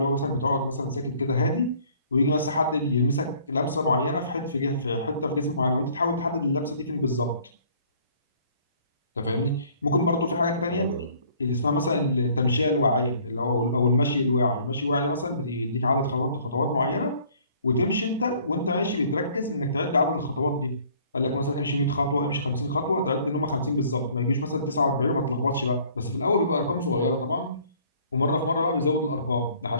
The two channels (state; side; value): inverted; both; correlation -0.57